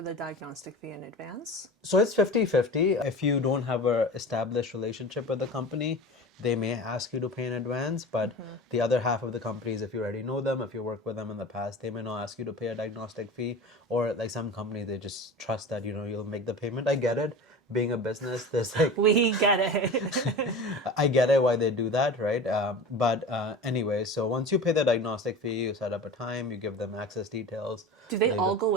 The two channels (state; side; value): normal; both; correlation 0.33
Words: the diagnostic fee in advance? So it's 50-50. If you don't have a established relationship with the company, they may ask you to pay in advance. But the other half of the companies, if you already know them, if you worked with them in the past, they may not ask you to pay a diagnostic fee. Or like some companies, they just trust that you'll make the payment. I get it. Being a business, there's like We get it. I get it why they do that, right? But anyway, so once you pay the diagnostic fee, you set up a time, you give them access details. Do they all go